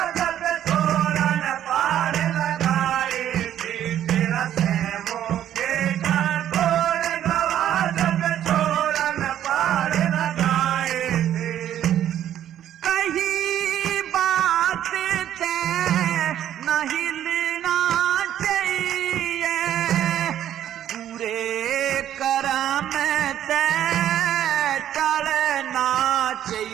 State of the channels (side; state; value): left; quieter; 11.1 dB